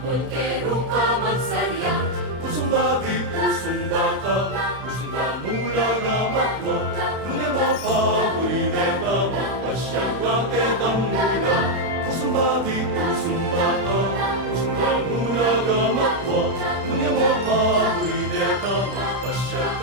Polkero ka magsarya, Pusong babi, pusong bata, pusong damula ramatwa, nungi mapaburireta, mapasyagaketang mula. Pusong babi, pusong bata, pusong damula ramatwa, nungi mapaburireta,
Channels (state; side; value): late; left; 32 ms